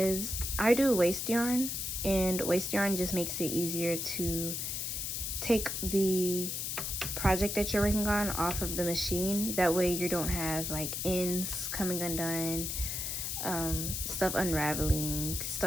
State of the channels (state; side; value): noise; left; hiss, 3 dB below the sound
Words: I do waste yarn, and waste yarn just makes it easier to take the project that you're working on off of the machine. That way you don't have like ends coming undone, stuff unraveling,